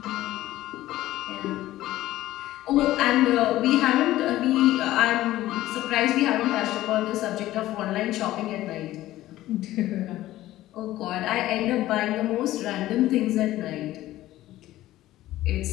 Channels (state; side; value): quieter; right; 15.3 dB